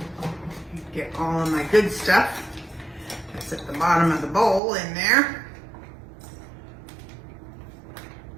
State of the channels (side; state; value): left; drops out; at 4.6 s